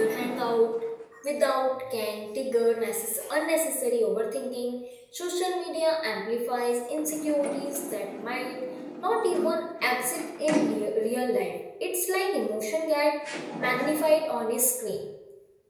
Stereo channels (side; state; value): both; identical; correlation 1.00